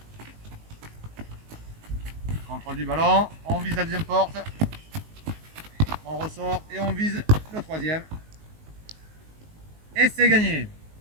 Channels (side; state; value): left; late; 19 ms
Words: Contrôle du ballon, on vise la deuxième porte. On ressort et on vise le troisième. Et c'est gagné.